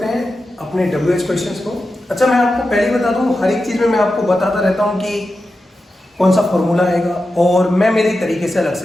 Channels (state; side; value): normal; both; correlation 0.91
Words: हैं अपने WH क्वेश्चंस को। अच्छा, मैं आपको पहले बता दूं, हर एक चीज में मैं आपको बताता रहता हूं कि कौन सा फॉर्मूला आएगा और मैं मेरे तरीके से अलग